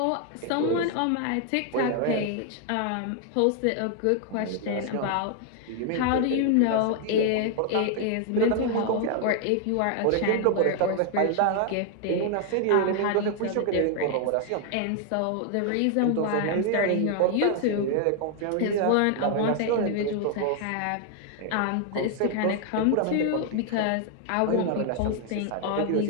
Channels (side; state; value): both; different; correlation 0.00